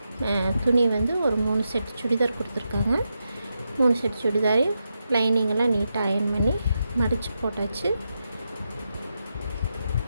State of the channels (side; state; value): both; inverted; correlation -0.86